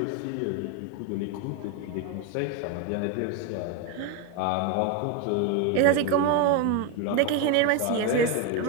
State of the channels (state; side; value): different; both; correlation 0.02